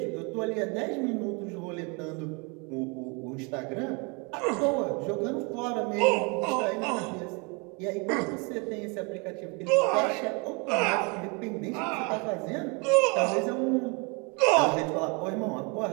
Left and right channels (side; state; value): left; quieter; 31.6 dB